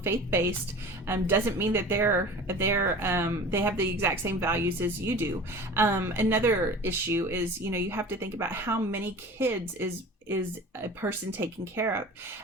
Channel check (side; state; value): both; normal; correlation 0.39